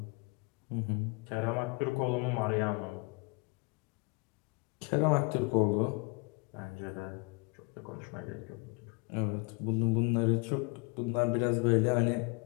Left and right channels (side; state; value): right; quieter; 30.6 dB